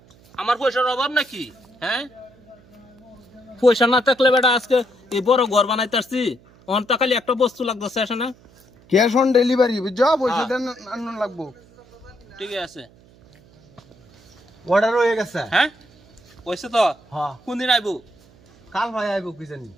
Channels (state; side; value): noise; right; hum, 27 dB below the sound